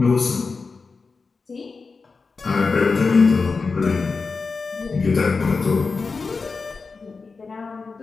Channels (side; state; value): right; quieter; 4.5 dB